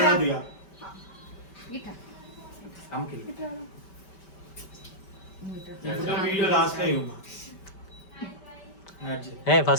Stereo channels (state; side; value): late; right; 5.2 ms